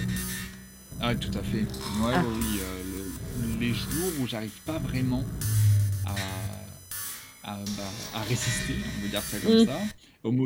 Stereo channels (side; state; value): both; identical; correlation 1.00